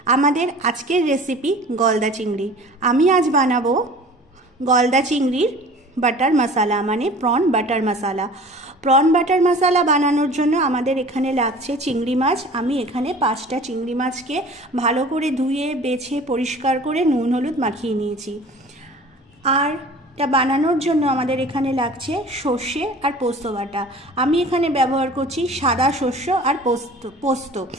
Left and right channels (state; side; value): normal; both; correlation 0.43